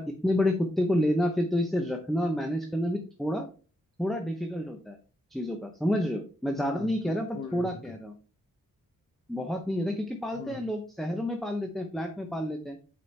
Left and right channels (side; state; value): both; normal; correlation 0.83